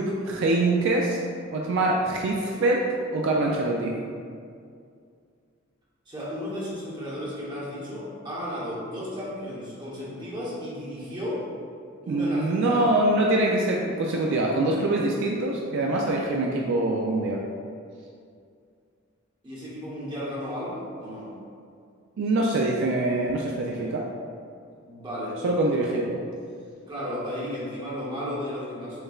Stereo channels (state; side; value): normal; both; correlation 0.24